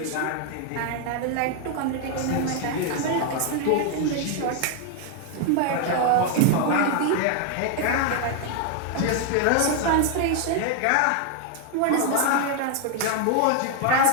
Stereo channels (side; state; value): both; different; correlation 0.00